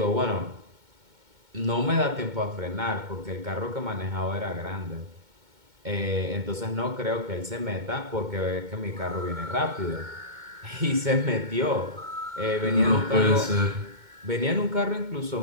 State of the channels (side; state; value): left; late; 2.2 ms